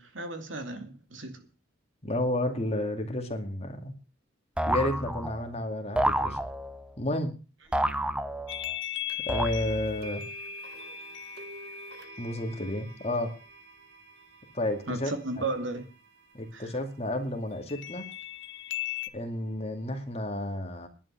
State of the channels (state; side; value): normal; both; correlation 0.50